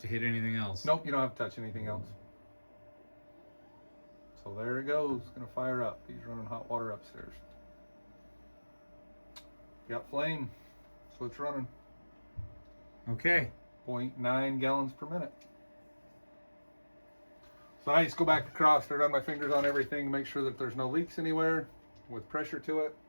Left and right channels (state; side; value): inverted; both; correlation -1.00